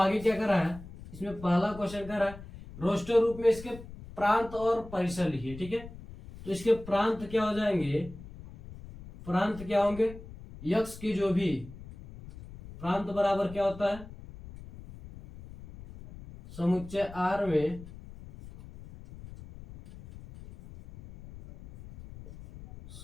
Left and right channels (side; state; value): left; noise; rumble, 16 dB below the sound